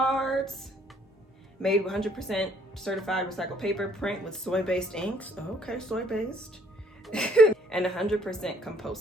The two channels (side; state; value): both; normal; correlation 0.63